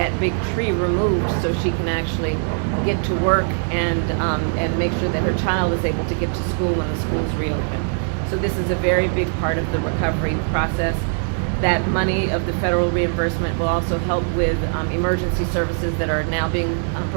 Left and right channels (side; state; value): left; silent; 64 dB below the other